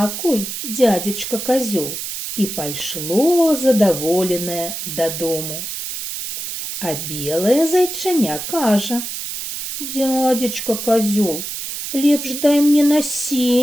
дядзечка козёл», і пайшло задаволенае дадому. А белае зайчаня кажа: «Дядзечка козёл, лепш дай мне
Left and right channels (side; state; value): right; noise; hiss, 6 dB below the sound